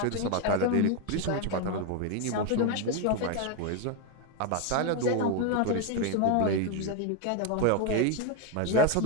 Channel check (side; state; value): both; different; correlation 0.01